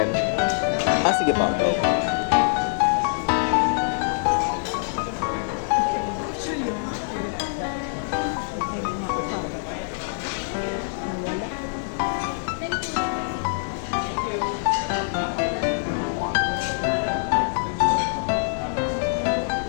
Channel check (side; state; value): right; silent; 62 dB below the other